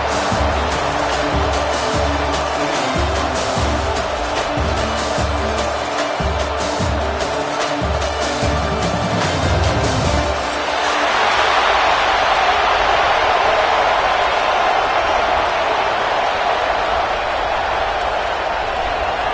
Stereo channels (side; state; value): both; identical; correlation 1.00